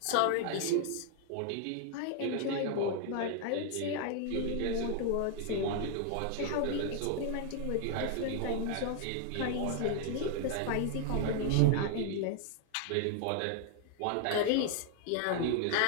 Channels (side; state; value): both; different; correlation 0.00